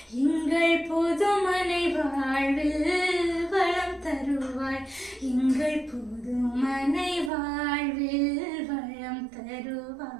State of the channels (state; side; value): drops out; left; at 7.3 s